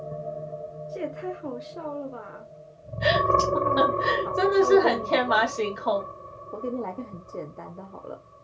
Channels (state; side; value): identical; both; correlation 1.00